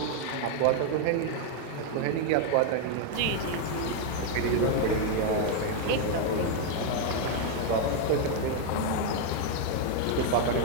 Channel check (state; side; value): different; both; correlation 0.01